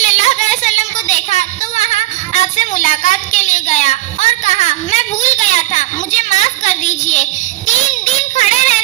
اللہ علیہ وسلم کو دیکھا تو وہاں آپ سے ملاقات کے لیے گیا اور کہا میں بھول گیا تھا، مجھے معاف کر دیجئے۔ 3 دن کھڑے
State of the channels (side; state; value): left; quieter; 16.4 dB